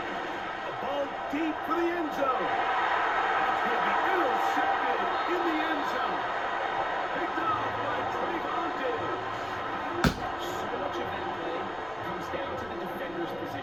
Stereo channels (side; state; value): left; noise; rumble, 21 dB below the sound